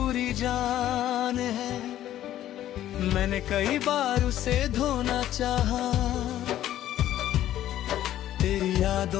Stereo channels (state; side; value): quieter; right; 12.6 dB